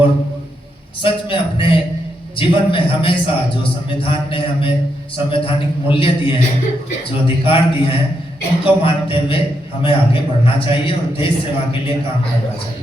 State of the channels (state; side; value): normal; both; correlation 0.81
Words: सच में अपने जीवन में हमेशा जो संविधान ने हमें संवैधानिक मूल्य दिए हैं, जो अधिकार दिए हैं, उनको मानते हुए हमें आगे बढ़ना चाहिए और देश सेवा के लिए काम करना